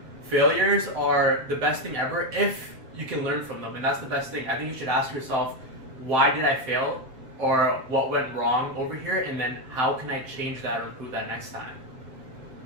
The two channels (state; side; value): late; left; 7.7 ms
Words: failures are the best thing ever if you can learn from them, and that's the best thing. I think you should ask yourself, why did I fail, or what went wrong over here, and then how can I change that or improve that next time?